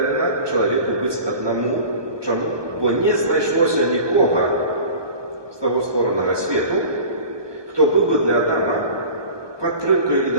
чалавеку быць аднаму. Чаму? Бо не знайшлося нікога з таго створанага свету, хто быў бы для Адама падтрымкаю і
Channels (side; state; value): left; late; 1.2 ms